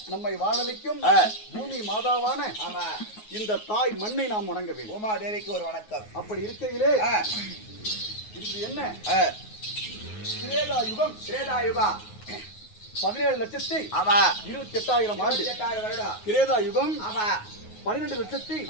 நம்மை வாழ வைக்கும் பூமி மாதாவான இந்த தாய் மண்ணை நாம் வணங்க வேண்டும். உமா தேவிக்கு ஒரு வணக்கம். அப்படி இருக்கையிலே இது என்ன திரேதா யுகம் 17,28,000 ஆண்டு. திரேதா யுகம்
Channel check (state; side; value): late; right; 9.4 ms